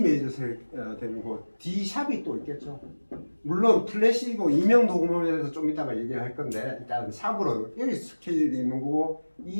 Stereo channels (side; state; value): both; inverted; correlation -1.00